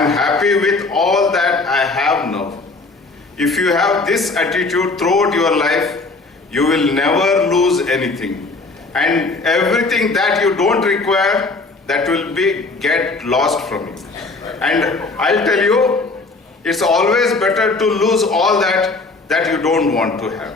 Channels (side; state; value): right; quieter; 3.6 dB